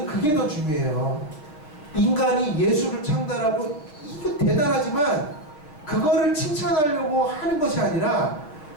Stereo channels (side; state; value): right; late; 6.5 ms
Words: 그게 더 중요해요. 인간이 예술을 창달하고 이거 대단하지만 그거를 칭찬하려고 하는 것이 아니라,